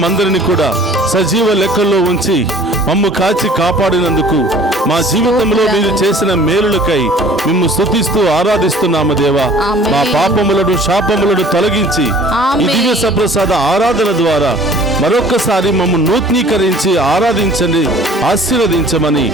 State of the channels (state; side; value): normal; both; correlation 0.50